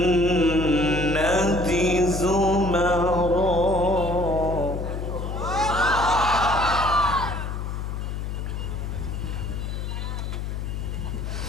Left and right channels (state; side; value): noise; left; hum, 4 dB below the sound